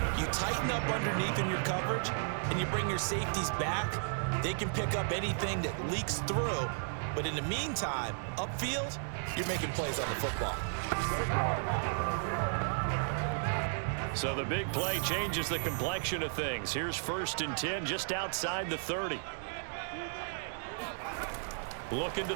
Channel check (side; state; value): left; silent; digital silence